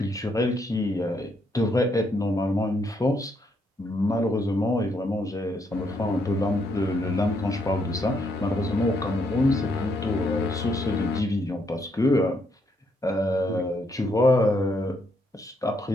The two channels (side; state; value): both; normal; correlation 0.74